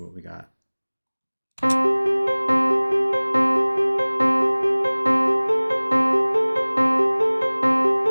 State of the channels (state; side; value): inverted; both; correlation -1.00